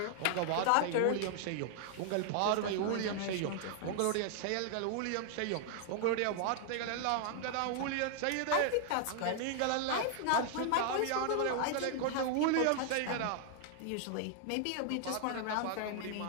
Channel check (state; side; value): different; both; correlation 0.00